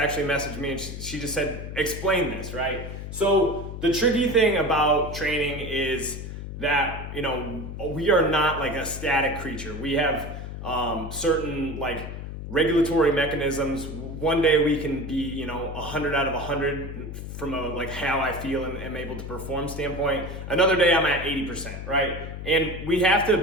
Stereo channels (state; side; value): noise; left; hum, 8 dB below the sound